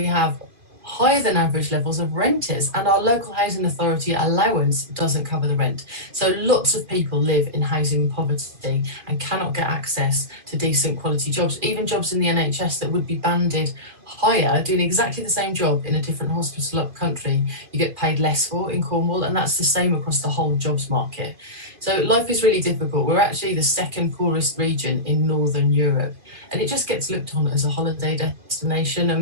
have higher than average levels of renters, and our local housing authority allowance doesn't cover the rent. So lots of people live in housing poverty and cannot get access to decent quality jobs, even jobs in the NHS that would be banded higher, doing exactly the same job in a different hospital up country, you get paid less for in Cornwall, and that's the same across the whole jobs market. So life is really difficult. We're actually the second poorest region in Northern Europe, and it just gets looked on as a holiday destination.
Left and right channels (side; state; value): left; late; 2.5 ms